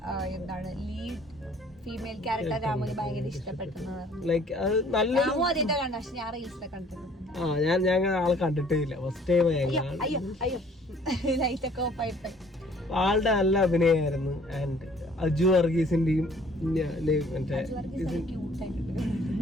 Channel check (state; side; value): normal; both; correlation 0.57